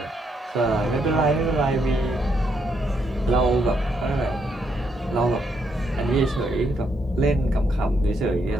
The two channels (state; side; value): normal; both; correlation 0.76